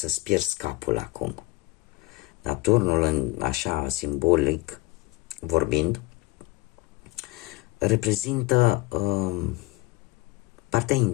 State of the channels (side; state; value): right; quieter; 21.6 dB